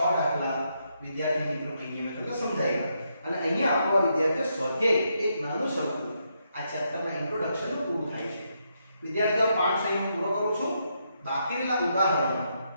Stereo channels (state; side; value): inverted; both; correlation -0.79